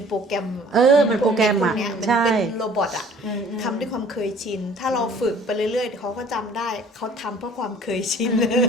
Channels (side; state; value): both; normal; correlation 0.52